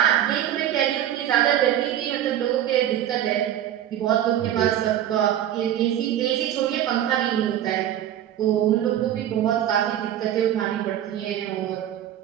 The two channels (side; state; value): left; quieter; 11.3 dB